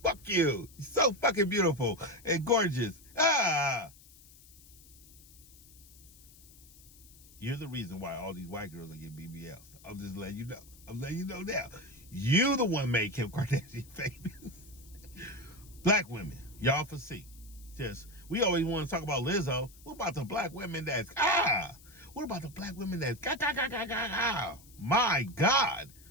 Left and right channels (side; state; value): left; noise; hiss, 23 dB below the sound